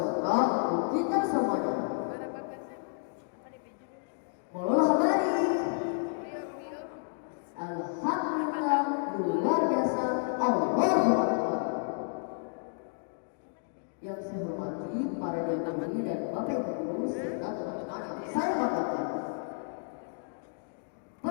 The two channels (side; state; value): right; silent; digital silence